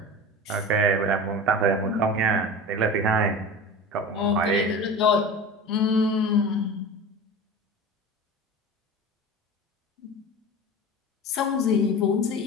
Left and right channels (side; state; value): both; normal; correlation 0.32